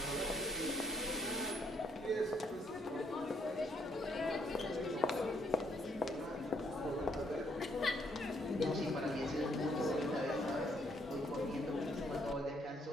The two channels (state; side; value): normal; both; correlation 0.71